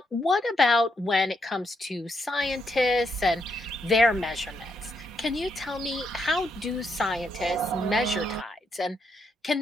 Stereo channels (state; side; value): normal; both; correlation 0.78